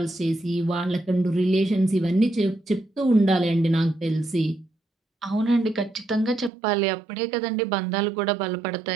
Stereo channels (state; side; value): drops out; left; at 6.5 s